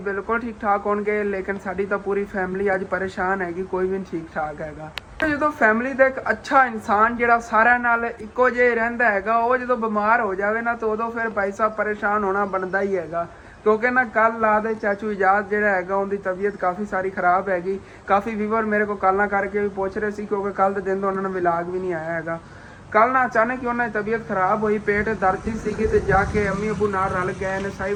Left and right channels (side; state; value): both; identical; correlation 1.00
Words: बिल्कुल ठीक ठाक होंगे, लेकिन साड़ी तो पूरी फैमिली अज परेशान हैगी, कोई भी नहीं ठीक ठाक हैगा। जो फैमिली का एक अच्छा इंसान जो सारे नाल इक्को जे रहिंदा हैगा, वो जो बीमार हो जाए ना तो उदों फिर भाई साहब परेशान होना बनता ही हैगा। क्योंकि ना कल ला दे चाचू इजाज़ जो हैगा उनकी तबीयत काफ़ी सारी खराब हैगी। काफ़ी व्यूवर मेरे को कॉल करके भी पूछ रहे थे, क्योंकि कल के दिन तो उन्होंने विलाग भी नहीं आया हैगा। कल ना अचानक ही उन्होंने तबीयत खराब हुई, पेट दर्द सी तो जाके अम्मी अबू नाल रल गए ने, साई